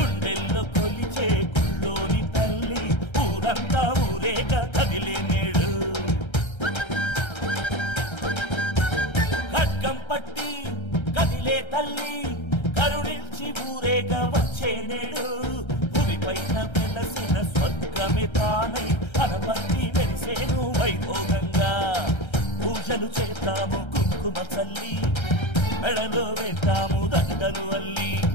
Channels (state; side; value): late; right; 1.3 ms